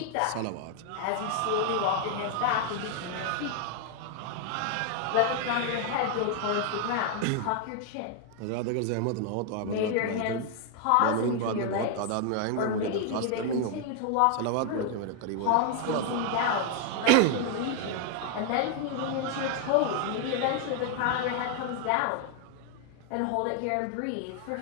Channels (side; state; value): both; different; correlation 0.00